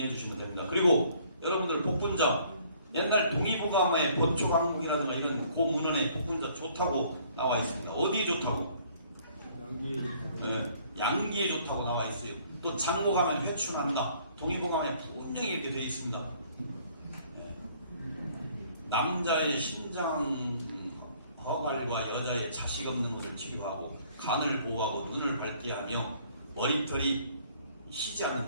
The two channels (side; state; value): both; inverted; correlation -0.60